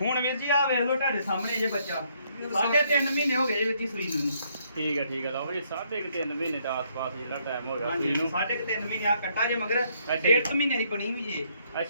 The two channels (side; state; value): both; inverted; correlation -0.70